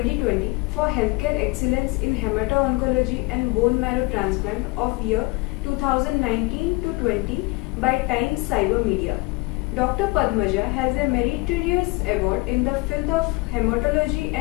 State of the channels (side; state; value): right; quieter; 25.8 dB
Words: for Healthcare Excellence in Hemato-Oncology and Bone Marrow Transplant of year 2019 to 20 by Times Cyber Media. Dr. Padmaja has a meritorious award in the field of hematology